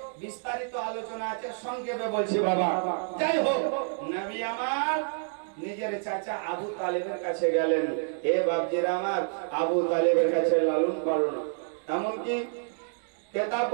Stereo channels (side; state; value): left; silent; digital silence